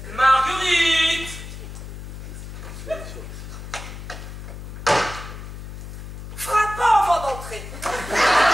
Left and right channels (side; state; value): left; noise; hum, 10 dB below the sound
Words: Marguerite. Frappant avant d'entrer.